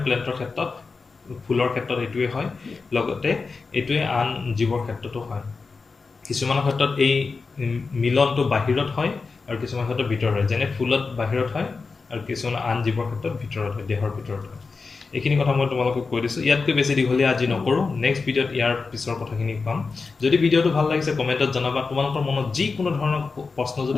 প্লেণ্টৰ ক্ষেত্ৰত ফুলৰ ক্ষেত্ৰত এইটোৱে হয় লগতে এইটোৱে আন জীৱৰ ক্ষেত্ৰতো হয় কিছুমানৰ ক্ষেত্ৰত এই মিলনটো বাহিৰত হয় আৰু কিছুমান ক্ষেত্ৰত ভিতৰত হয় যেনে ফুলত বাহিৰত হয় আৰু কিছুমান আন জীৱৰ ক্ষেত্ৰত ভিতৰত হয় দেহৰ ভিতৰত হয় এইখিনি কথা মই তোমালোকক কৈ দিছোঁ ইয়াতকৈ বেছি দীঘলীয়া আজি নকৰোঁ নেক্সট ভিডিঅ'ত ইয়াৰ পিছৰ কথাখিনি পাম যদি ভিডিঅ'টো ভাল লাগিছে কমেণ্টত জনাবা তোমালোকৰ মনত যিকোনো ধৰণৰ প্ৰশ্ন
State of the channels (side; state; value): right; quieter; 4.4 dB